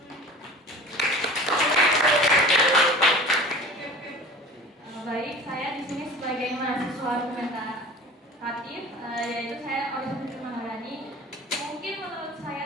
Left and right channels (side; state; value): both; normal; correlation 0.39